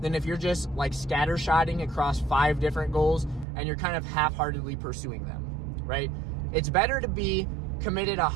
than if you're just like scattershotting across 5 different goals and you're kind of half-heartedly pursuing them, right? It's better to be committed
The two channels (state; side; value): drops out; left; at 3.5 s